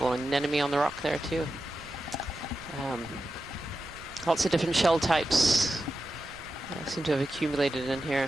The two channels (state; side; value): noise; right; rumble, 20 dB below the sound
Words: anemone on the rock there too. Lots of different shell types seem to have accumulated in